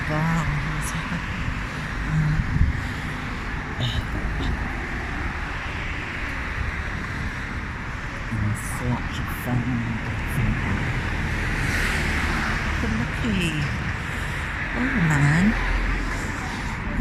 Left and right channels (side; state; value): both; identical; correlation 1.00